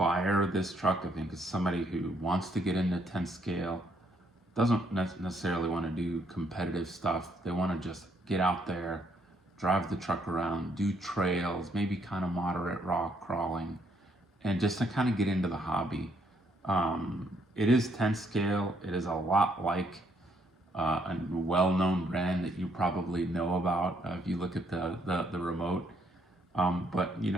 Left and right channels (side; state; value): both; normal; correlation 0.70